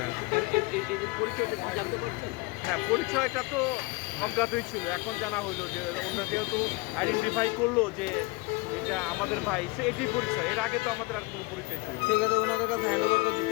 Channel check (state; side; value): quieter; right; 25.1 dB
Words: এদের পরিচয়টা কি জানতে পারছেন? হ্যাঁ, পরিচয়টা তো অজ্ঞাতই ছিল, এখন জানা হইলো যে ওরা যেহেতু আইডেন্টিফাই করলো যে এটা আমাদের ভাই, সে এটাই পরিচয়। এর আগে তো আমাদের আর কোনো পরিচয় ছিল না। সেক্ষেত্রে ওনাদের কাছে হ্যান্ড ওভার করে